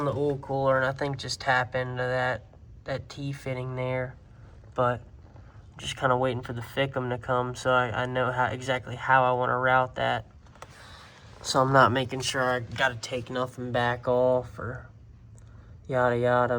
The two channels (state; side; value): identical; both; correlation 1.00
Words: the oil cooler, and I think just tap into that T-fitting there, but just kind of waiting for the FICM to come, so I know exactly how I want to route that. So I'm not making sure I got to take nothing back off or yada